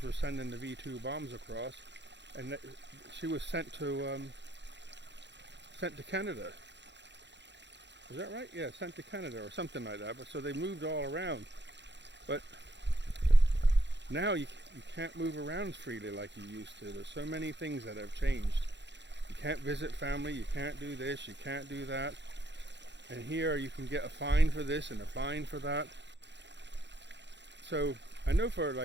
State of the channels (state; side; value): late; left; 0.52 ms